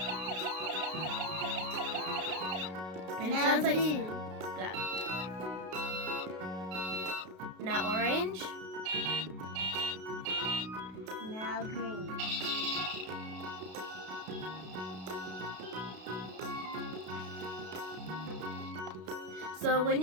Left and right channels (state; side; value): late; left; 32 ms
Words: And it Now sounds like blue. black. Now orange. Now green. So when